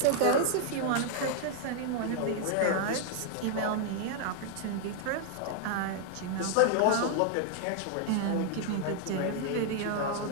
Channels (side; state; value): both; different; correlation -0.01